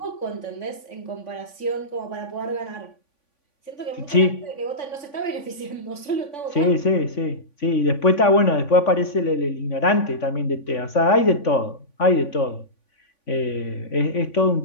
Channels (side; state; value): right; late; 3.5 ms